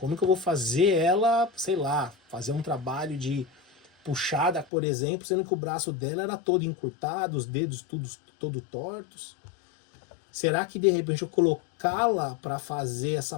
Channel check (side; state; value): right; drops out; at 4.7 s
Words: que eu vou fazer ela, sei lá, fazer um trabalho de puxada, por exemplo, sendo que o braço dela era todo encurtado, os dedos todo tortos? Será que de repente eu colocá-la para fazer essa